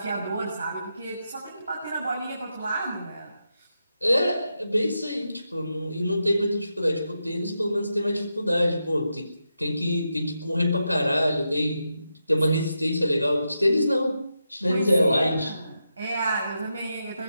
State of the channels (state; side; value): inverted; both; correlation -0.87